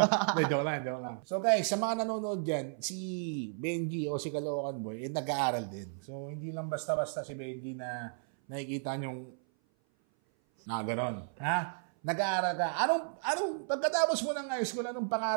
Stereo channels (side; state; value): left; silent; 55 dB below the other